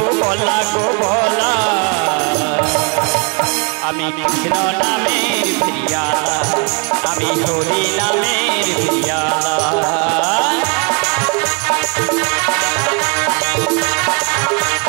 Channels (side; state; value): left; quieter; 34.1 dB